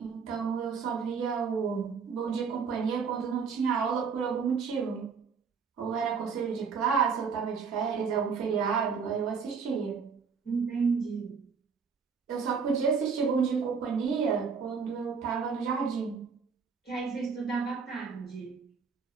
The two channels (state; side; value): quieter; left; 5.8 dB